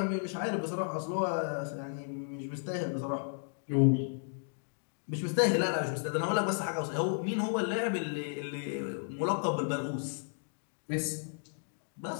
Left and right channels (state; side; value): silent; right; digital silence